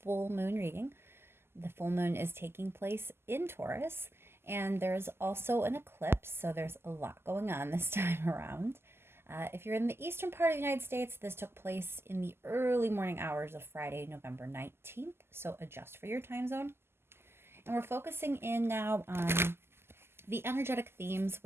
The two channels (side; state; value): left; late; 0.12 ms